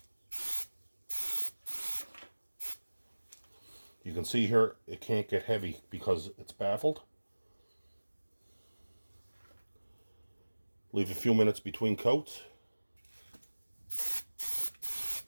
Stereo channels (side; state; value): both; inverted; correlation -1.00